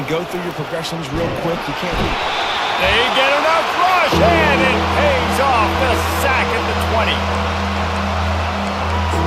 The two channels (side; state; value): both; identical; correlation 1.00